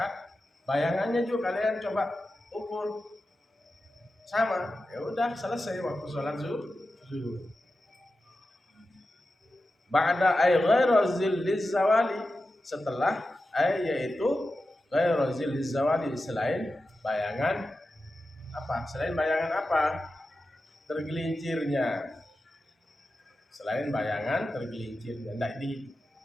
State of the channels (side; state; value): both; normal; correlation 0.92